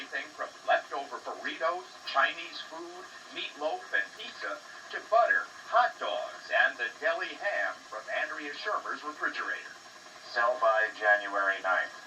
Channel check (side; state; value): both; identical; correlation 1.00